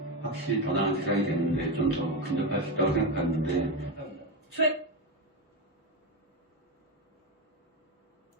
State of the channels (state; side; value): normal; both; correlation 0.13